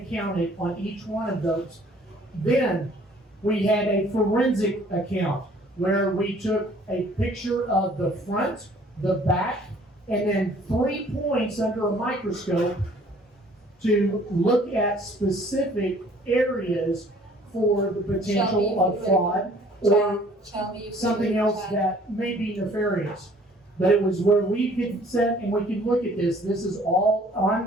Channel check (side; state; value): both; normal; correlation 0.56